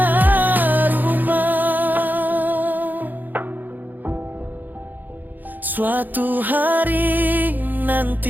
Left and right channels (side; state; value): left; late; 0.086 ms